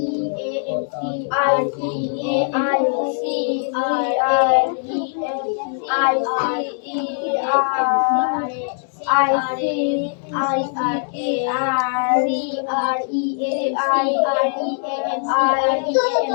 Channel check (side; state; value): right; silent; 60 dB below the other